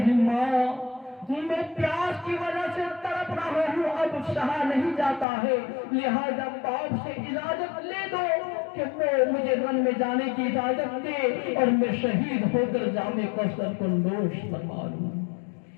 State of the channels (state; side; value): drops out; right; at 5.2 s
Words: ماں میں پیاس کی وجہ سے تڑپ رہا ہوں، اب سہا نہیں جاتا ہے، لہذا باپ سے اجازت لے دو کہ وہ مجھے رن میں جانے کی اجازت دے اور میں شہید ہو کر جام کوثر کو نوش فرما لوں۔